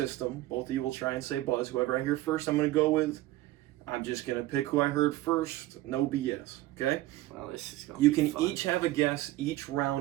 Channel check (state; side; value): quieter; left; 16.7 dB